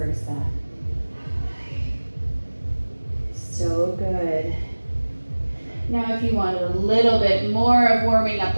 So good. Now if you want a little bit more of warming up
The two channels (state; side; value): inverted; both; correlation -1.00